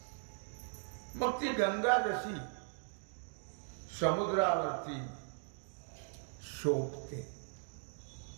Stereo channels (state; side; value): silent; left; 52 dB below the other